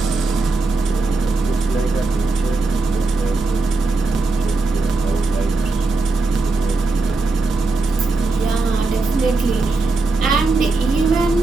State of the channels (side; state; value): left; quieter; 3.5 dB